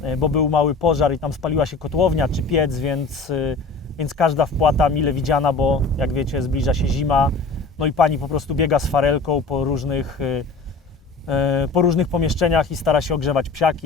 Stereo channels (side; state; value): right; quieter; 3.9 dB